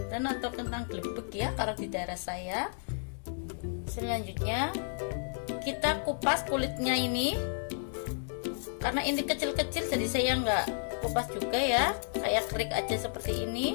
atau kentang glebek ya kalau di daerah saya. Selanjutnya kita kupas kulitnya ini. Karena ini kecil-kecil jadi saya nggak kupas juga ya. Saya klik aja seperti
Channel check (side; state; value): right; silent; digital silence